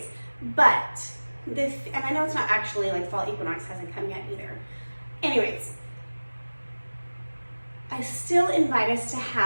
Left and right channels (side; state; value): both; inverted; correlation -1.00